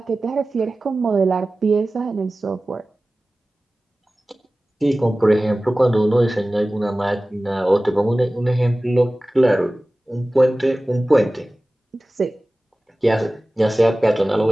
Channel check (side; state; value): both; normal; correlation 0.97